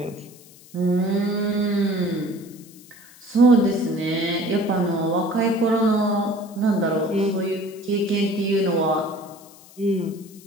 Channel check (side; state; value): left; noise; hiss, 23 dB below the sound